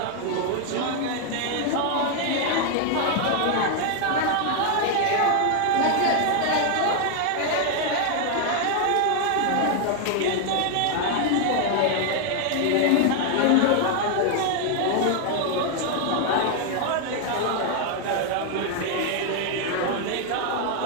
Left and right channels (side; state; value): both; different; correlation 0.00